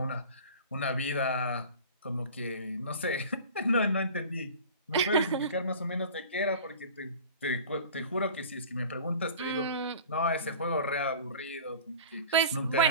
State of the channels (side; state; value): both; inverted; correlation -0.40